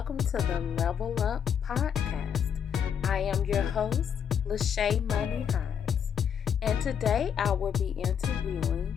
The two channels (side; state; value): right; quieter; 8.0 dB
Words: to the Level Up Podcast. I am your host, Lachey Money Hines, and today I will be interviewing